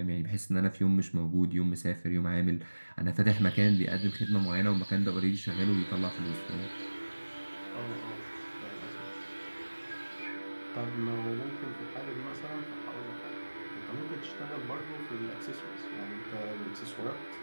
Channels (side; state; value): both; inverted; correlation -1.00